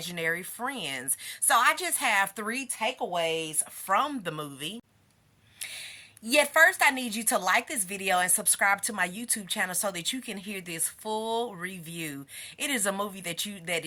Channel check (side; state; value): both; identical; correlation 1.00